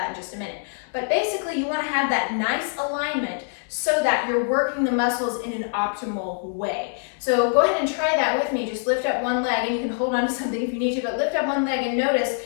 in just a minute. But basically, you want to have that nice alignment so that you're working the muscles in an optimal way. So go ahead and try that with me. Just lift up one leg, and you can hold on to something if you need to, but lift up one leg and notice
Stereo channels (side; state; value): right; silent; digital silence